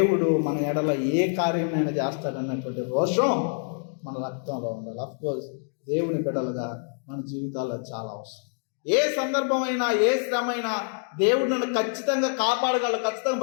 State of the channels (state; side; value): silent; right; 58 dB below the other